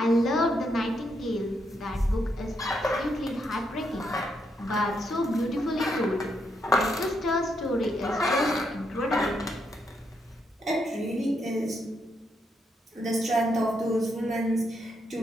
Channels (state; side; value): normal; both; correlation 0.79